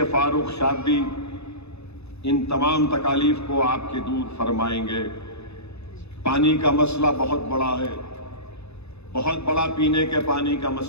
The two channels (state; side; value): late; right; 0.80 ms